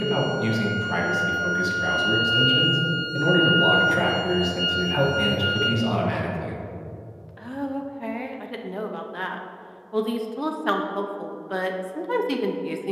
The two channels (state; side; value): identical; both; correlation 1.00